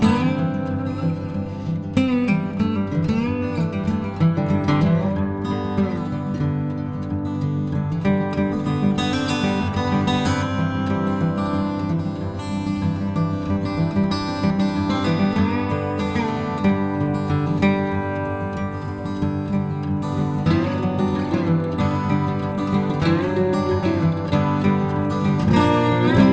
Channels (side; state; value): both; identical; correlation 1.00